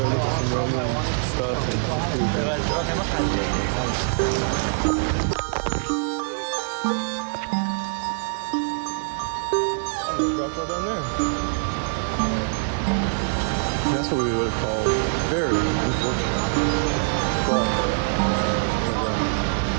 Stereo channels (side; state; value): left; silent; digital silence